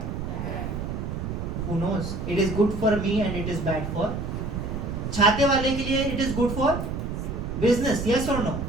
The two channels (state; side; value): noise; right; rumble, 4 dB below the sound